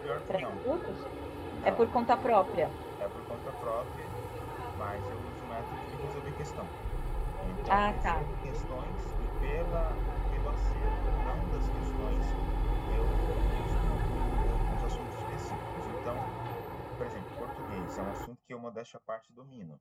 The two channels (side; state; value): both; identical; correlation 1.00